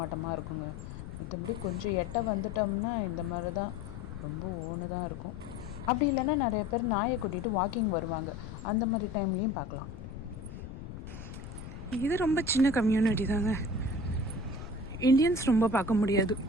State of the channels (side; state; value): left; noise; rumble, 10 dB below the sound